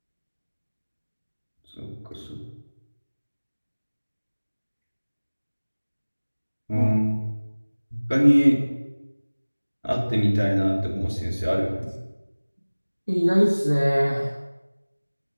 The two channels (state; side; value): inverted; both; correlation -1.00